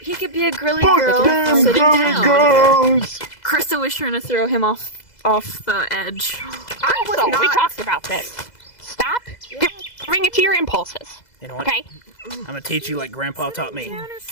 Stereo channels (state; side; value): late; right; 2.0 ms